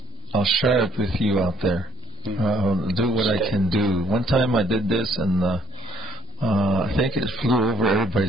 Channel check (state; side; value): normal; both; correlation 0.64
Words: I'll share it with you out there. I'll do what I can do. One time I did this, and I think it flew over